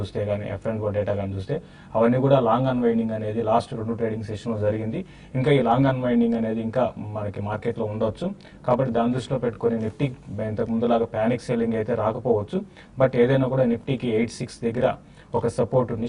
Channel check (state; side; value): identical; both; correlation 1.00